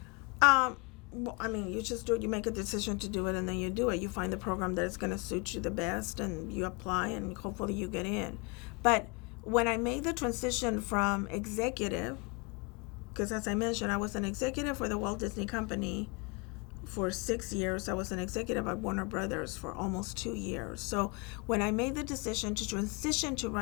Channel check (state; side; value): quieter; right; 30.5 dB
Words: Well, I mean, you just do it. You make a decision to do it, and then you do it. You find the program that is going to suit you the best, and you apply, and hopefully you get in. But when I made the transition from executive, because as I mentioned, I was an executive for the Walt Disney Company for 6 years. I was an executive at Warner Brothers for almost 2 years. So when I made the decision to transition to